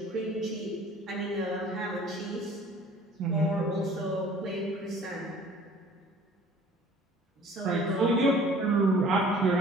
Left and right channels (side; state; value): both; normal; correlation 0.50